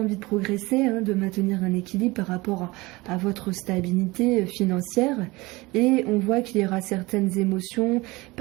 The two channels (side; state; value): left; quieter; 22.2 dB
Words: de progresser, de maintenir un équilibre par rapport à votre stabilité financière. Et on voit qu'il y aura certaines émotions,